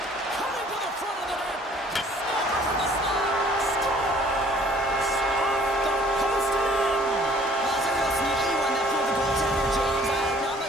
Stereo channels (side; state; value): both; normal; correlation 0.57